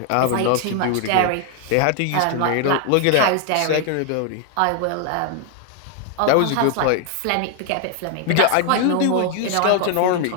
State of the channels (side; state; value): both; different; correlation 0.00